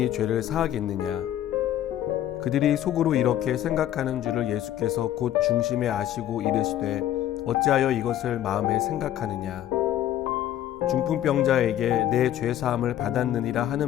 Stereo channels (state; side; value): quieter; right; 12.0 dB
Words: 죄를 사하겠느냐. 그들이 속으로 이렇게 생각하는 줄을 예수께서 곧 중심에 아시고 이르시되 어찌하여 이것을 마음에 생각하느냐. 중풍병자에게 내 죄 사함을 받았느니라